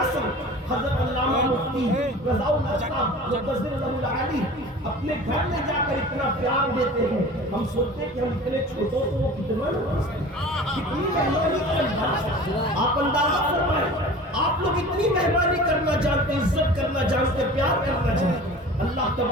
عصر حضرت علامہ مفتی رضا اللہ صاحب مقدس اللہ علی اپنے گھر میں جا کر اتنا پیار دیتے ہیں، ہم سوچتے ہیں کہ ہم اتنے چھوٹوں کو وہ کتنا کتنی مہربانی کرنا۔ آپ اندازہ فرمائیں آپ لوگ اتنی مہربانی کرنا جانتے، عزت کرنا جانتے، پیار کرنا جانتے۔ اللہ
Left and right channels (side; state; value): both; normal; correlation 0.40